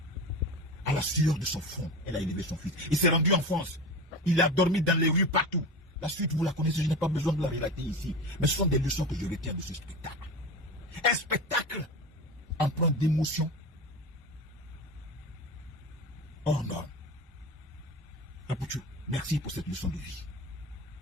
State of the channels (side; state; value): both; normal; correlation 0.27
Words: À la sueur de son front, elle a élevé son fils. Il s'est rendu en France. Il a dormi dans les rues partout. La suite, vous la connaissez, je n'ai pas besoin de la relater ici. Mais ce sont des leçons que je retiens de ce spectacle. Un spectacle empreint d'émotion. Oh non. Apoutou, merci pour cette leçon de vie.